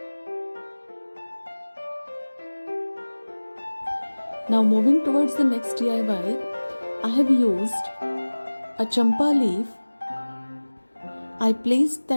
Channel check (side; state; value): both; inverted; correlation -1.00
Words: Now moving towards the next DIY, I have used a champa leaf. I placed